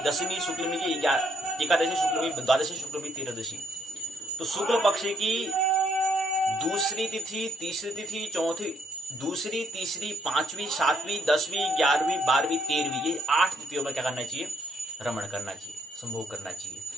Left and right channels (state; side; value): normal; both; correlation 0.71